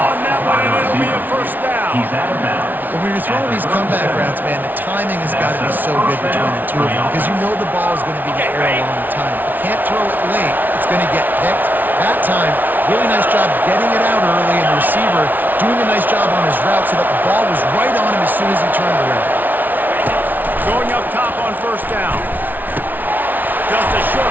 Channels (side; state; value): left; late; 0.084 ms